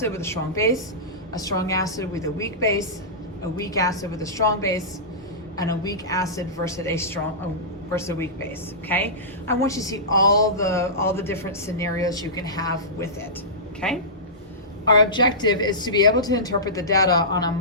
with a strong base, a strong acid with a weak base, a weak acid with a strong base, and a weak acid versus a weak base, okay? I want you to see all the different scenarios you can have with it, okay? Our objective is to be able to interpret the data on a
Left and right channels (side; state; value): both; normal; correlation -0.19